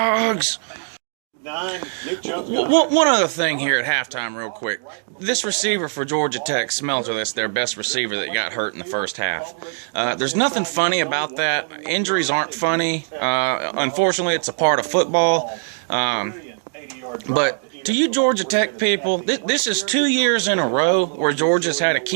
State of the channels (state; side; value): silent; left; 65 dB below the other